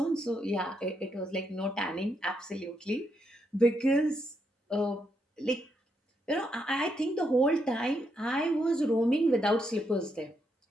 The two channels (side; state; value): both; normal; correlation 0.79